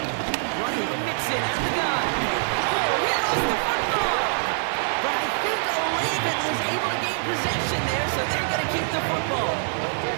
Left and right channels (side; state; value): left; silent; digital silence